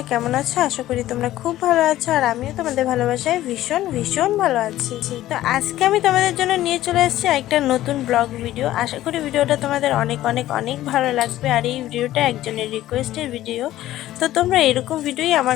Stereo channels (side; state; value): right; quieter; 14.4 dB